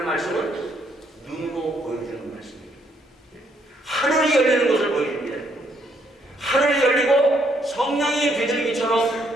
말씀은 눈으로 보여주는 말씀입니다. 하늘이 열리는 것을 보여줍니다. 하늘이 열리고 성령이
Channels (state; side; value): normal; both; correlation 0.71